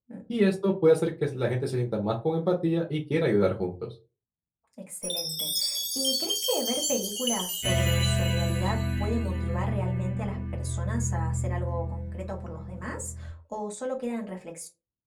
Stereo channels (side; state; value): both; identical; correlation 1.00